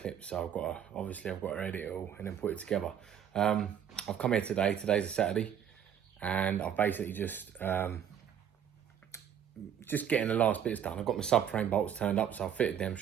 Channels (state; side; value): quieter; left; 9.0 dB